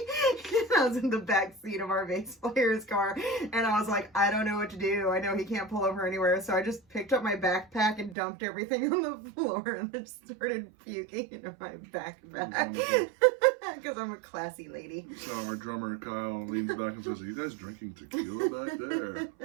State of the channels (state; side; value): drops out; left; at 8.2 s